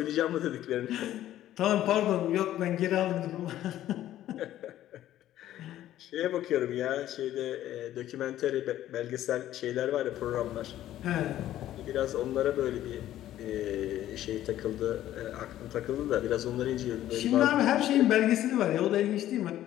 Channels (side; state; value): right; quieter; 13.0 dB